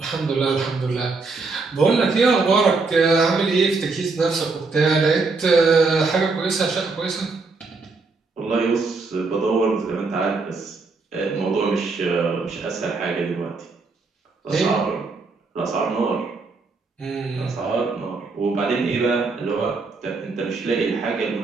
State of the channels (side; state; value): left; quieter; 4.0 dB